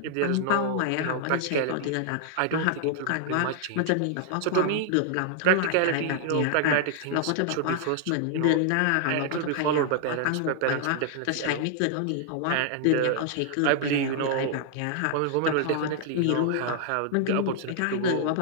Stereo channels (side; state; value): both; different; correlation 0.00